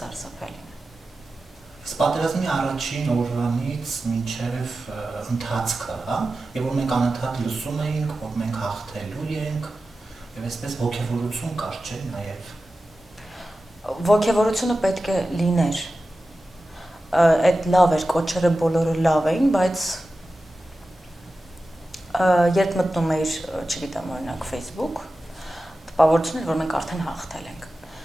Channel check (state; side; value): normal; both; correlation 0.94